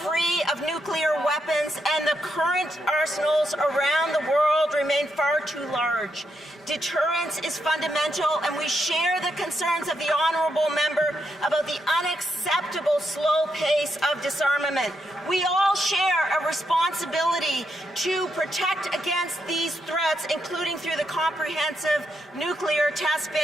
of nuclear weapons, and the current arsenals around the world remain far too large. Deterrence is fundamental, and we share the concerns of the honourable member about the unacceptable slow pace of disarmament. We all share a responsibility to protect against these threats, including through the Comprehensive Nuclear Test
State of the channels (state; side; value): normal; both; correlation 0.81